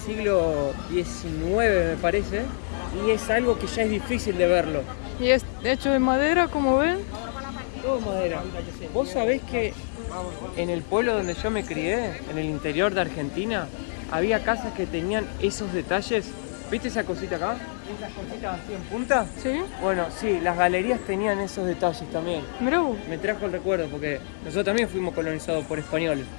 XIX, me parece, y es algo que ya es difícil de verlo. Y es hecho de madera, como ven. Todo madera. Vos sabés que en el pueblo donde yo me crié, en el interior de Argentina, había casas que tenían esos detalles. ¿Viste esa cosita acá? Esas cositas así en punta. Sí, Bueno, sí, las galerías tenían esos detalles también. mirá vos. Me trajo el recuerdo porque nosotros también fuimos colonizados por españoles.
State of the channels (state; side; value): silent; right; digital silence